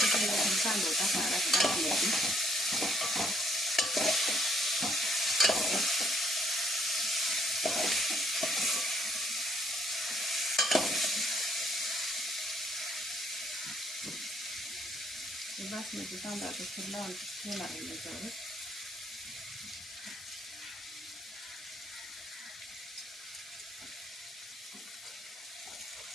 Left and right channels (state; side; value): normal; both; correlation 0.68